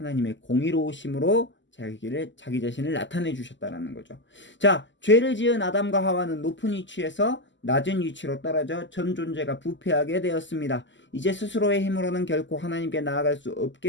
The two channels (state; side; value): late; right; 0.54 ms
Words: 공의로우심으로 자기 자신을 나타내 주셨다는 거죠. 자, 죄를 지은 아담과 하와는 높은 위치에서 낮은 위치로 떨어져 전 존재가 부패하게 되었습니다. 이제 스스로의 힘으로는 결코 하나님께 나아갈 수